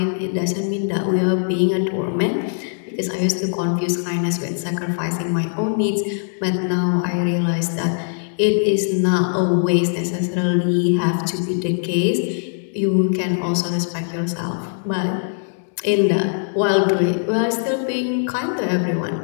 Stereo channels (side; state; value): right; silent; digital silence